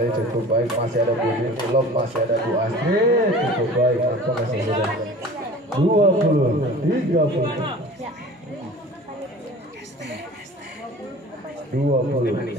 cukup baik masih ada Bu Yuni lob masih ada Bu Astrid cukup baik nampaknya saudara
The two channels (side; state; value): both; normal; correlation 0.42